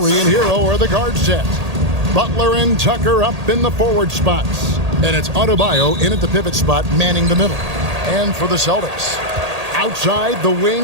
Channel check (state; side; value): late; left; 1.8 ms